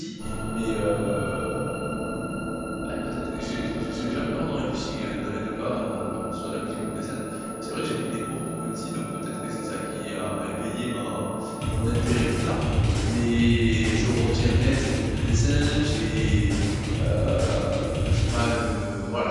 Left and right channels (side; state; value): both; identical; correlation 1.00